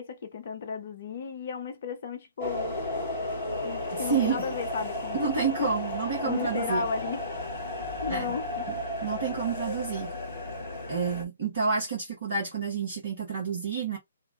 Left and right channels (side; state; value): both; inverted; correlation -0.47